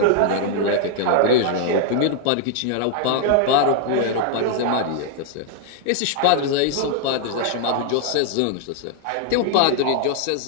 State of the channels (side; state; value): both; different; correlation 0.00